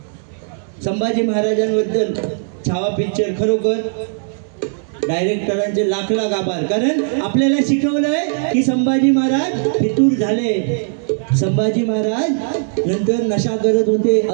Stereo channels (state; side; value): silent; left; 67 dB below the other